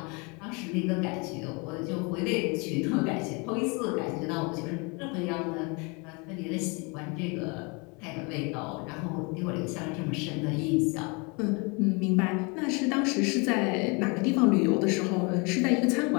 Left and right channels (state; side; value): quieter; right; 30.3 dB